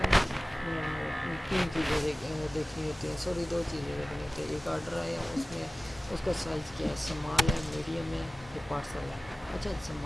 تین چیزیں دیکھنی ہوتی ہیں، سوری دو چیزیں دیکھنی ہوتی ہیں. ایک آرڈر آیا اس میں اس کا سائز کیا ہے، سمال ہے، میڈیم ہے یا پارسل ہے. اچھا،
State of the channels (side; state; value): both; normal; correlation 0.95